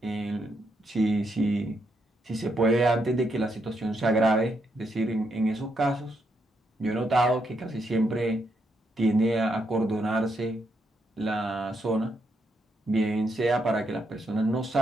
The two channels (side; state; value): both; normal; correlation 0.79